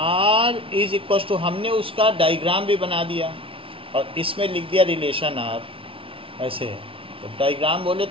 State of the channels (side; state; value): left; late; 0.26 ms